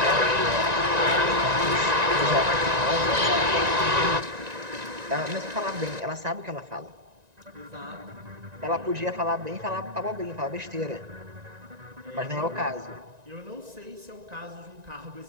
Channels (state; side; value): late; left; 1.9 ms